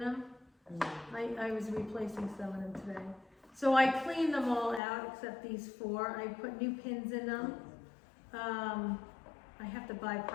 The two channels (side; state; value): right; drops out; at 4.8 s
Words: I was replacing some of them today. So I cleaned them all out except these 4. I put new pins in them. I have to buy